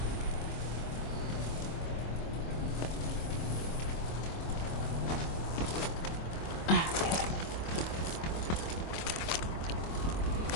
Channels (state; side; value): late; right; 25 ms